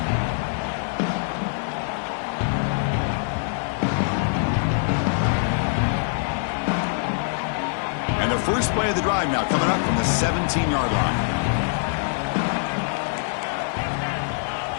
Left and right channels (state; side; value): silent; right; 63 dB below the other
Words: And the first play of the drive now coming up from the 17-yard line.